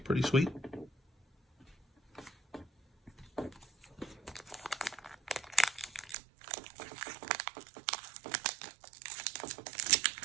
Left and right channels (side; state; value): left; drops out; at 6.2 s